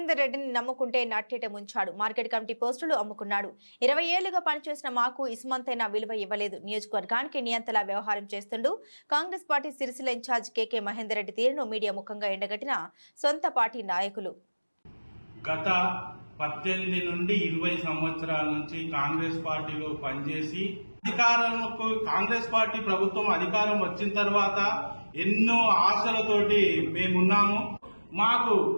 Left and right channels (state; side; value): inverted; both; correlation -1.00